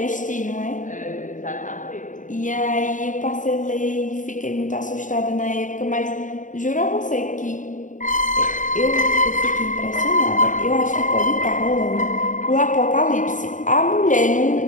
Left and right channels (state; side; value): late; right; 0.37 ms